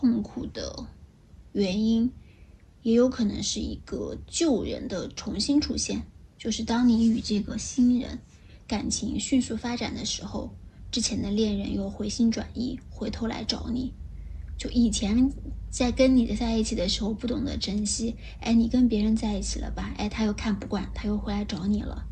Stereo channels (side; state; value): both; identical; correlation 1.00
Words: 苦的原因，也有可能是一个旧人的重新出现，就是当你与这个新人感情迅速发展的时候，之前的恋人又回心转意，回头来找你。就以前在跟你在一起的时候不懂得珍惜，你跟别人在一起了吧，他又看不惯，他又回来找你了，